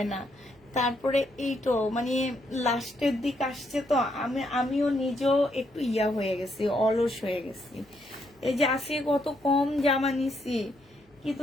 না। তারপরে এইটো মানে লাস্টের দিক আসছে তো, আমিও নিজেও একটু ইয়া হয়ে গেছি, অলস হয়ে গেছি। এই যে আসে কত কম জামা নিছি,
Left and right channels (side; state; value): both; normal; correlation 0.75